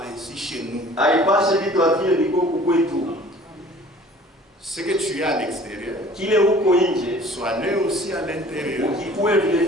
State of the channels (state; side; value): normal; both; correlation 0.49